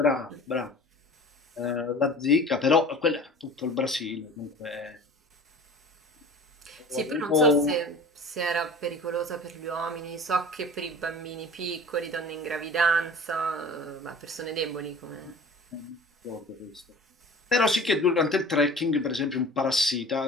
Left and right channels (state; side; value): normal; both; correlation 0.42